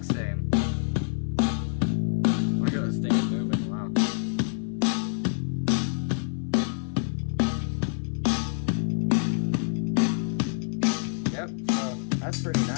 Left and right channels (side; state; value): right; silent; 57 dB below the other